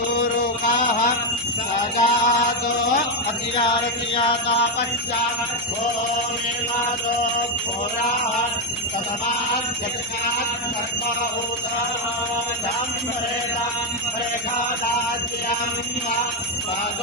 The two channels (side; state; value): both; normal; correlation 0.04